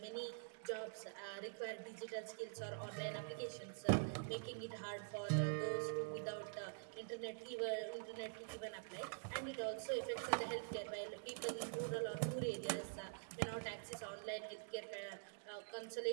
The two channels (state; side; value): silent; left; digital silence